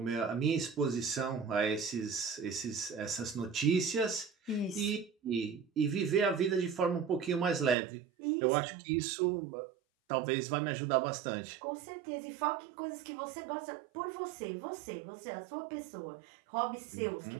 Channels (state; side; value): drops out; left; at 7.8 s